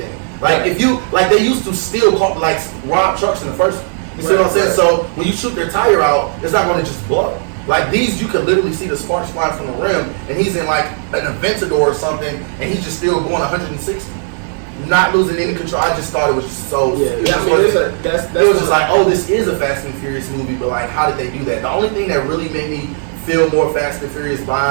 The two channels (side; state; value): left; silent; 69 dB below the other